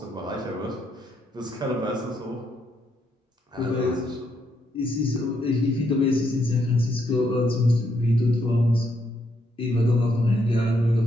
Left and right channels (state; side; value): normal; both; correlation 0.76